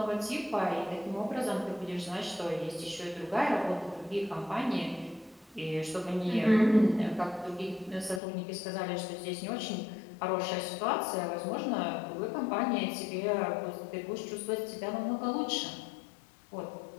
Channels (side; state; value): right; drops out; at 8.2 s